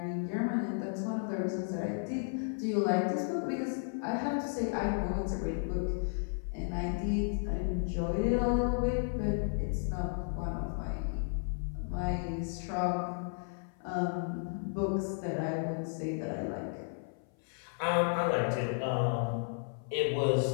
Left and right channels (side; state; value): right; silent; 55 dB below the other